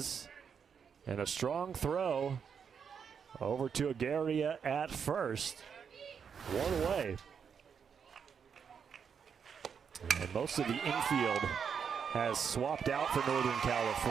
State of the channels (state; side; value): quieter; left; 6.9 dB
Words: and a strong throw over to Agaria at first. One away. And most of the infield has swapped out for Northern